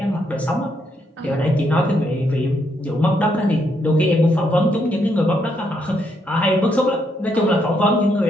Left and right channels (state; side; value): normal; both; correlation 0.76